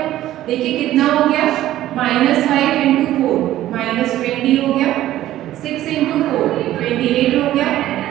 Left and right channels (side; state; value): left; quieter; 13.9 dB